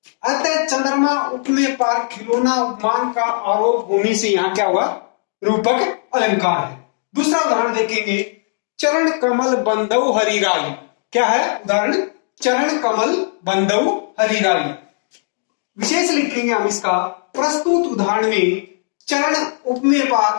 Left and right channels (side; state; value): right; silent; 67 dB below the other